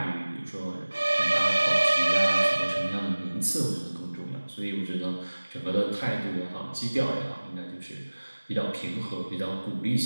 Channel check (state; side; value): inverted; both; correlation -1.00